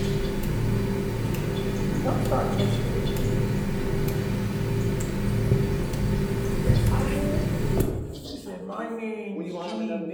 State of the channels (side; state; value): both; identical; correlation 1.00